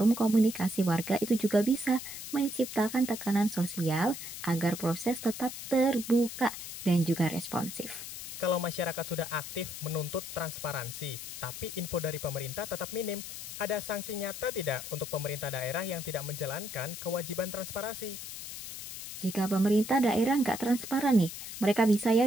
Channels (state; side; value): noise; left; hiss, 9 dB below the sound